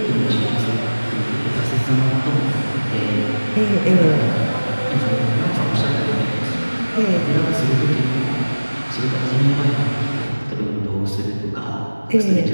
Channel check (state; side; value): inverted; both; correlation -1.00